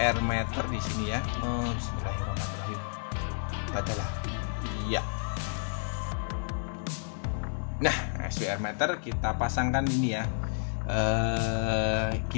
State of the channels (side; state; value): right; silent; digital silence